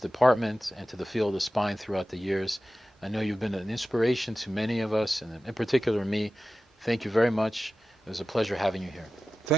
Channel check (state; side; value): normal; both; correlation 0.94